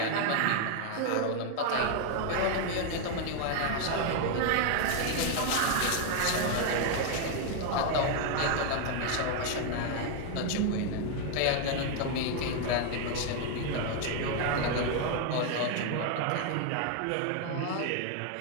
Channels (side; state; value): both; different; correlation 0.00